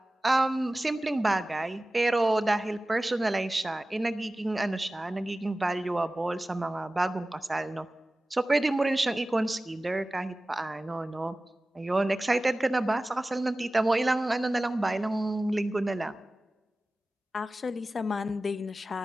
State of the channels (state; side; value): normal; both; correlation 0.97